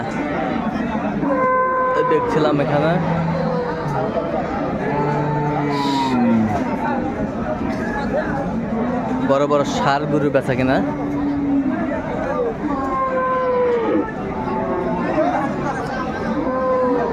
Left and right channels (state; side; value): identical; both; correlation 1.00